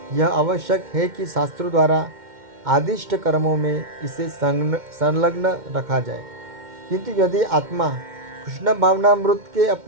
यह आवश्यक है कि शास्त्रों द्वारा आदिष्ट कर्मों में इसे संलग्न रखा जाए। किंतु यदि आत्मा कृष्ण भावनामृत के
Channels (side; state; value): left; late; 2.1 ms